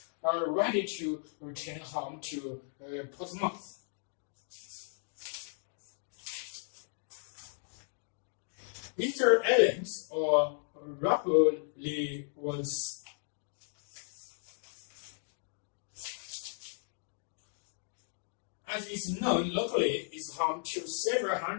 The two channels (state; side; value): silent; right; digital silence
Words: ready to return home to Portsmouth. Easter Islands, or Rapoli, was as is known locally, is home to several